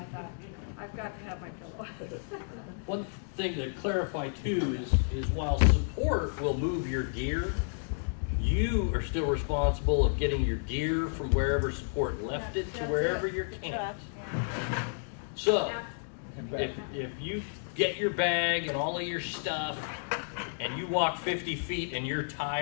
thought, I've got to have my pillow. One thing to clarify too is while support will move your gear, you are still responsible of getting your gear from wherever support left it to That's wherever it. you're camped. So, if you get your bag and all of your stuff and you walk 50 feet and you're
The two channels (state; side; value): silent; right; digital silence